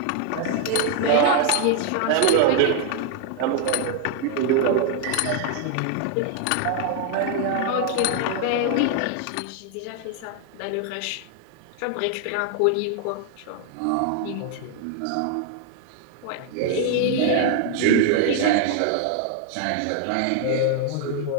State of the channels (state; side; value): different; both; correlation 0.00